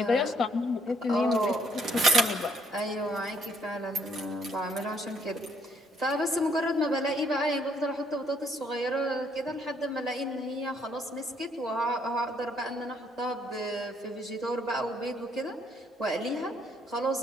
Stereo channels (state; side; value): normal; both; correlation 0.68